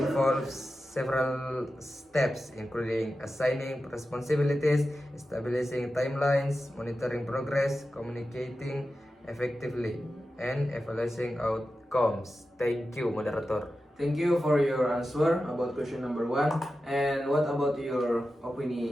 several steps, including assigning responsibilities, establishing timelines, monitoring progress, communicating effectively, and evaluating outcomes. Thank you, moderator. Thank you for your answer about question number 1. And what about your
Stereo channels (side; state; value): both; normal; correlation 0.92